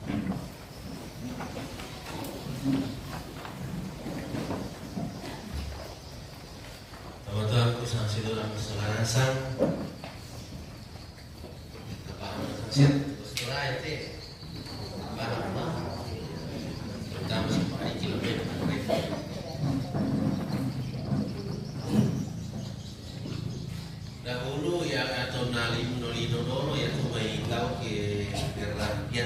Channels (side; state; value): both; identical; correlation 1.00